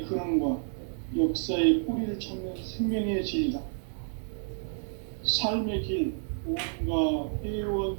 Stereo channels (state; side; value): silent; left; digital silence